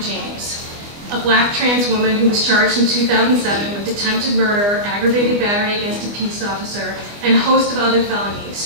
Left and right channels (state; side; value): late; left; 25 ms